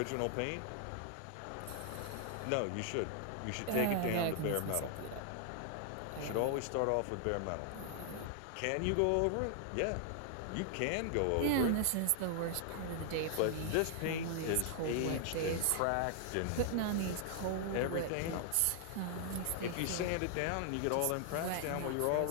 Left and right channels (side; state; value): both; different; correlation 0.00